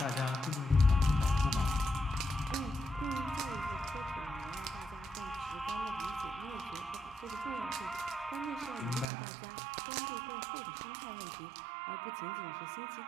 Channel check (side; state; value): left; drops out; at 9.1 s